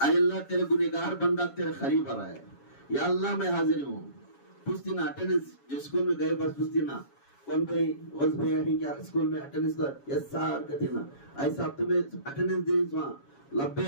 اللہ تیرے گنہگار بندہ تیرے قریب آ رہا ہے. یا اللہ میں حاضر ہوں. پوچھتی نا اٹینڈنس جو اسکول میں گئے بس پوچھتی نا کون بھائی وز بھائی ہے کیا اسکول میں اٹینڈنس دا یس سر کہتی نا ایسا اب تمہیں اٹینڈنس دیں وہاں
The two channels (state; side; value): late; right; 7.2 ms